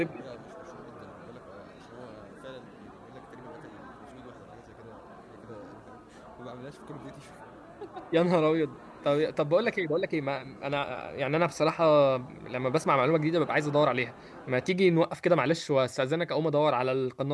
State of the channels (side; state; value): both; identical; correlation 1.00